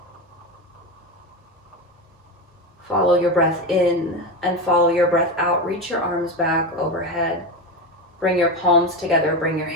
Follow your breath in and follow your breath out. Reach your arms back overhead. Bring your palms together. Bring your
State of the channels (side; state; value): both; normal; correlation 0.18